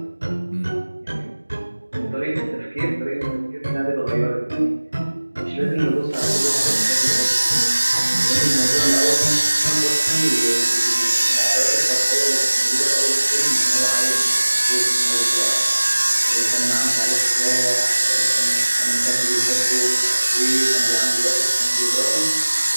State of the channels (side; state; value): both; inverted; correlation -1.00